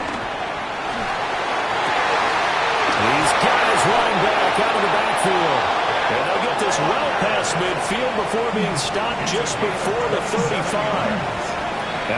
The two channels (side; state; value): both; identical; correlation 1.00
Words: He's got his running back out of the backfield. And they'll get this well past midfield before being stopped just before the 35.